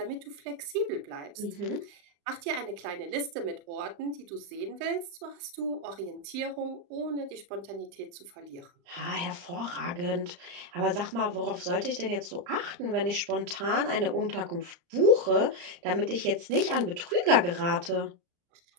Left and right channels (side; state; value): left; late; 35 ms